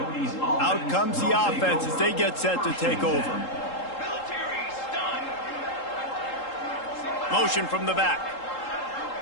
comes the offense as they get set to take over. Motion from the back.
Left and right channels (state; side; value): late; right; 3.8 ms